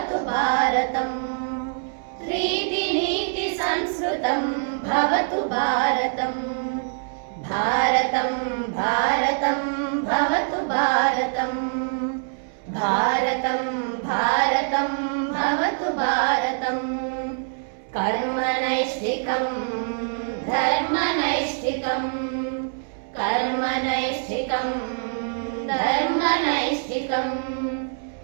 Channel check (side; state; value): left; silent; 62 dB below the other